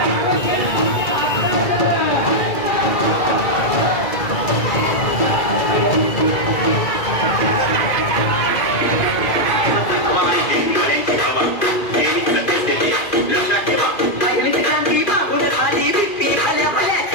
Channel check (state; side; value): late; right; 2.4 ms